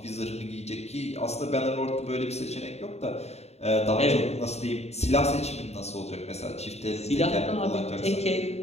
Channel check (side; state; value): right; late; 0.31 ms